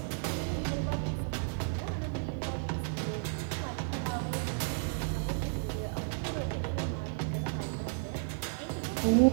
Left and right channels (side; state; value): left; silent; 56 dB below the other